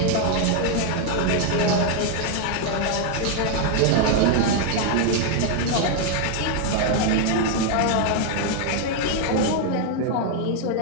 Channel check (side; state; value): both; different; correlation 0.00